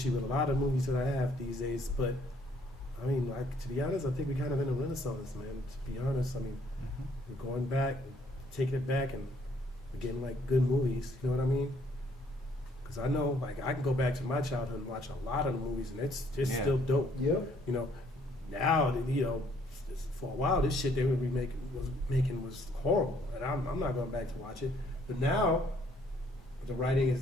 with a lot of movies that I have these days. But I mean, like, to be honest, I think we're kind of in a renaissance, man. To be honest, I mean, we're going back, taking it back, and we're getting like good movies. You know what I mean? Because I know, like, I can go back to my childhood and watch a lot of the movies, and it's Yeah. still dope. Yep. You know, now, you know, for a while, this shit they were making was horrible, and I'm not going back to watch it. But now, the writing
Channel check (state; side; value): normal; both; correlation 0.65